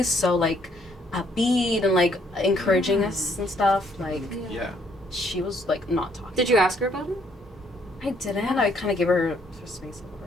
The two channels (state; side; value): normal; both; correlation 0.67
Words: so like upbeat and like encouraging us and stuff. Like, Yeah. she was like not talking. Did you ask her about it? I didn't. I kind of gave her space over.